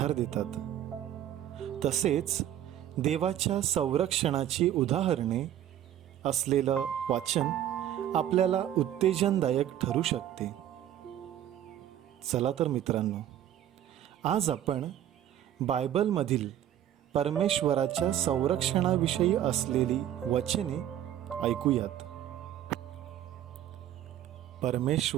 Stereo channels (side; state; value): left; quieter; 11.3 dB